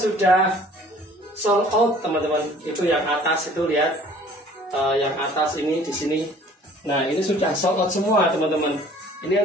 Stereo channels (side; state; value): both; normal; correlation 0.52